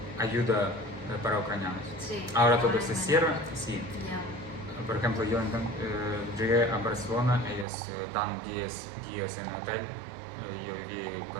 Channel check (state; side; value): drops out; left; at 7.7 s